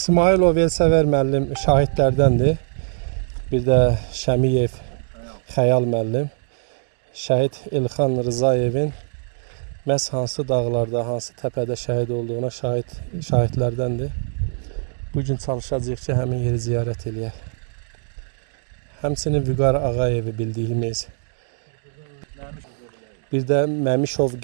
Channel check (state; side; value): silent; left; digital silence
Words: Elsəvər müəllim şahidlərdəndir. Bir də Şəmiyev Xəyal müəllim. Şəhid Elxan Rızayevin məhz hansı dağlarda, hansı təpədə şəhid olduğuna şahidlərdəndir. Bugün çalışacağıq ki, həmin yeri ziyarət eləyək. Həmçinin Vüqar Ağayevi bildiyimiz, bir də Məmişov